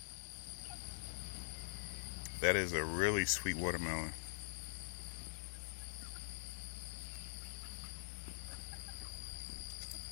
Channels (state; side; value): silent; right; digital silence